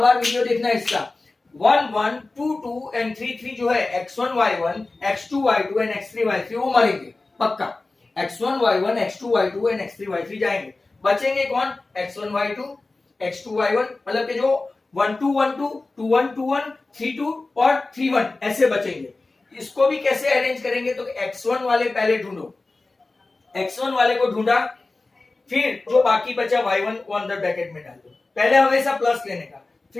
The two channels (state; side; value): quieter; right; 3.4 dB